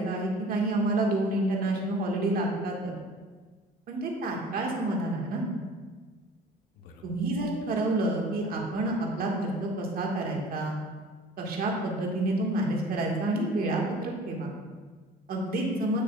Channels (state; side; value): normal; both; correlation 0.46